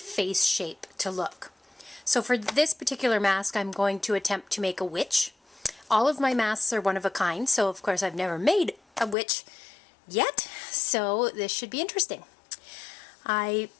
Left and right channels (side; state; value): right; drops out; at 9.2 s